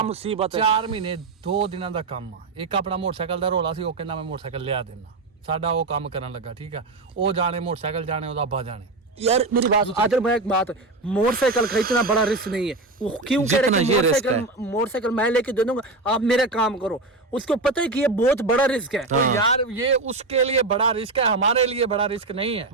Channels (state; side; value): quieter; left; 3.3 dB